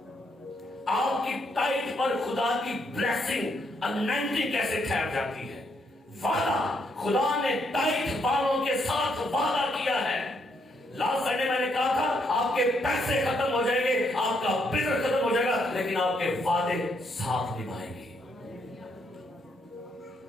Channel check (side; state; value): both; normal; correlation 0.75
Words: آپ کی ٹائٹ پر خدا کی بلیسنگ انائنٹنگ کیسے ٹھہر جاتی ہے؟ وعدہ، خدا نے ٹائٹ بالوں کے ساتھ وعدہ کیا ہے۔ لاسٹ سنڈے میں نے کہا تھا آپ کے پیسے ختم ہو جائیں گے، آپ کا بزنس ختم ہو جائے گا، لیکن آپ کے وعدے ساتھ نبھائیں گے۔